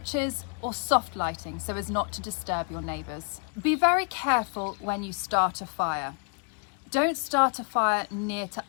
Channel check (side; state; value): right; quieter; 39.6 dB